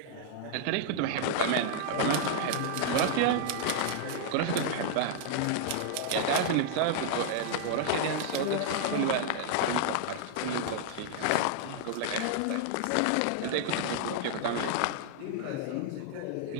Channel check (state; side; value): different; both; correlation -0.01